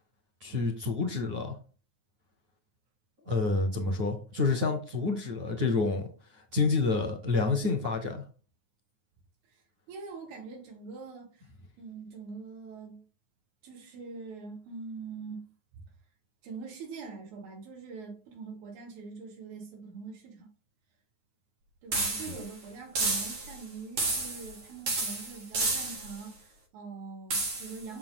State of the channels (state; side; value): late; left; 9.4 ms